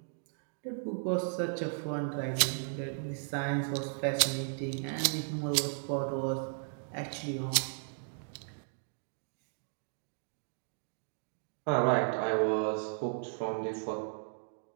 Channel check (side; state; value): left; silent; digital silence